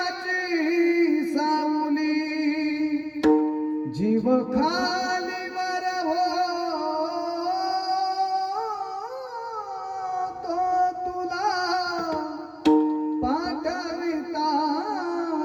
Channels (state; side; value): identical; both; correlation 1.00